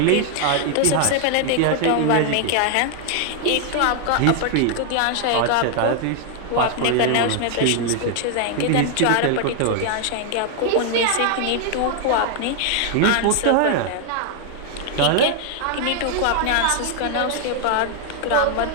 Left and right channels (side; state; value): both; different; correlation 0.00